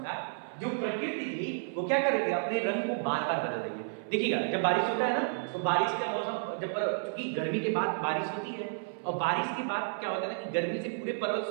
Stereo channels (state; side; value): silent; left; 57 dB below the other